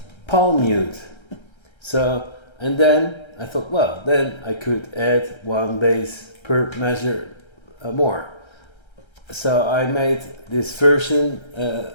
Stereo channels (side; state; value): right; late; 1.3 ms